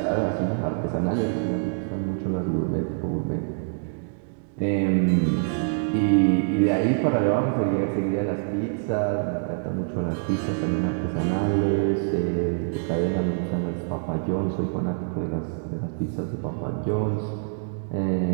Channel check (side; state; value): left; silent; digital silence